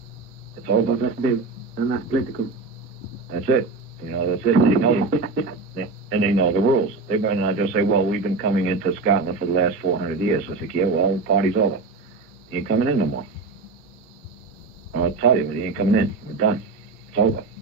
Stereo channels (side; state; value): left; quieter; 4.0 dB